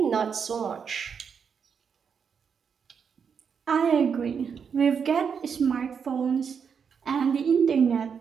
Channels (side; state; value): left; quieter; 6.6 dB